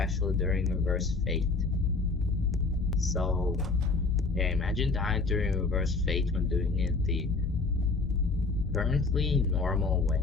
during reverse fate. So, yeah, imagine dying during reverse fate when doing it the currently normal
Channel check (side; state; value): right; quieter; 3.9 dB